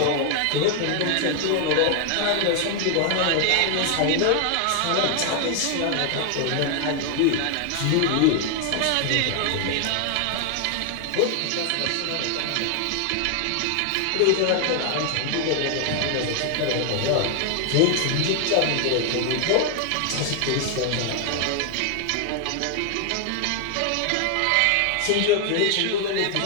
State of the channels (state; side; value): different; both; correlation 0.00